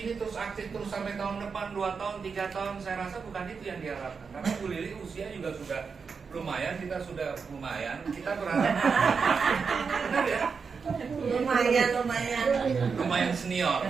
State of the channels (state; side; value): quieter; left; 5.5 dB